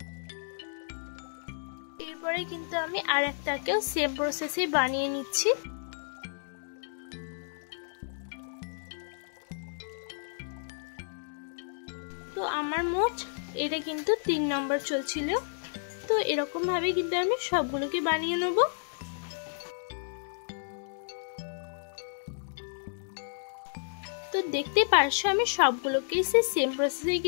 এরপরে কিন্তু আমি আর একটাকেও সেম প্রসেসে বানিয়ে নিচ্ছি। তো আমার মোট এটা কিন্তু 3 নম্বর চলছিল। তো এরকম ভাবে কিন্তু আমি সবগুলোকে বানিয়ে নেব। তো দেখতে পারছো আমি সবগুলোকেই সেম প্রসেসেই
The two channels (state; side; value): silent; right; digital silence